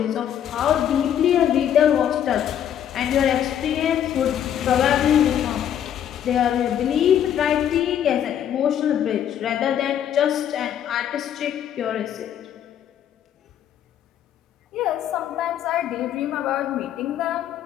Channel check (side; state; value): right; quieter; 9.9 dB